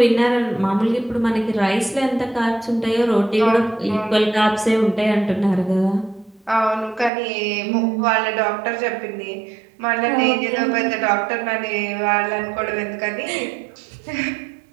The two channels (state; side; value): drops out; left; at 7.1 s